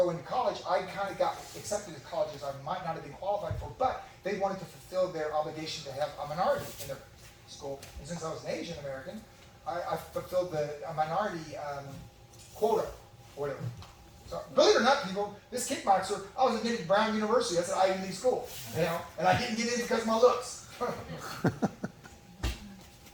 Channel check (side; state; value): both; identical; correlation 1.00